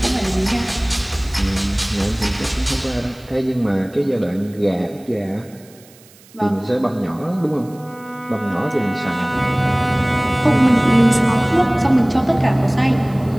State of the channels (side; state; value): right; noise; hiss, 26 dB below the sound